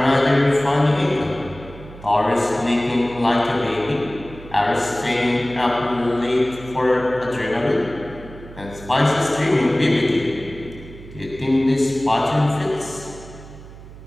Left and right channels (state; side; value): noise; right; hum, 17 dB below the sound